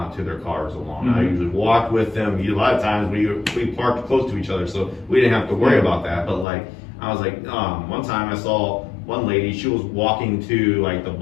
to their cars alone. I usually walked with them. A lot of times we parked close to each other, so we didn't have to worry about that. But like, I was like, one time I saw one lady, she was walking to like the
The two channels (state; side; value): drops out; right; at 6.5 s